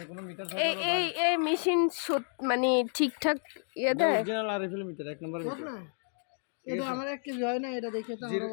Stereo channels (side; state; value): right; silent; 57 dB below the other